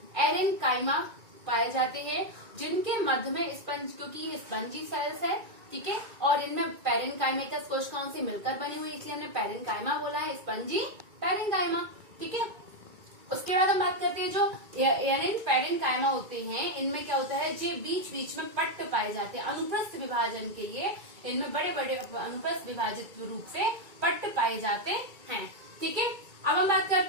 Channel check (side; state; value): left; late; 2.3 ms